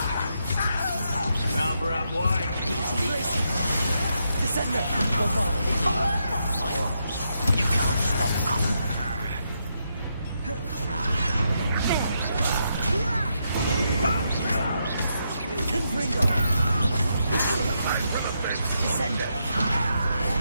Rubber up white. Descender. Bombarder. You can't stop us. Confringo. Descender.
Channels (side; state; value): both; inverted; correlation -0.81